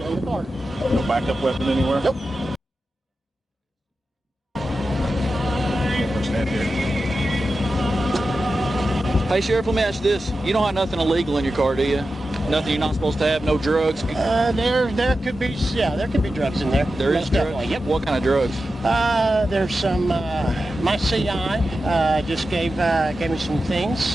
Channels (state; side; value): normal; both; correlation 0.92